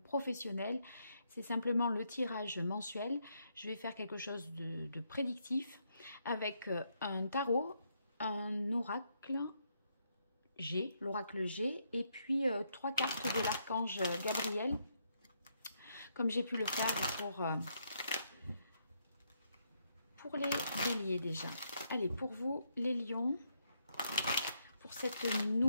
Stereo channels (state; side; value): inverted; both; correlation -0.76